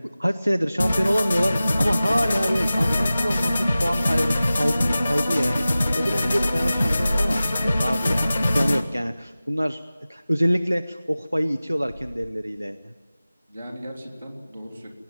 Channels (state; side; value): inverted; both; correlation -0.97